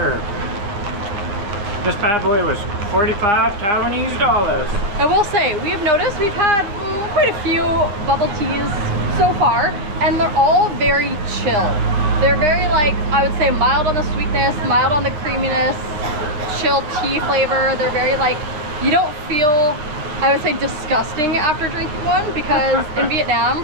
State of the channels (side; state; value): left; late; 9.8 ms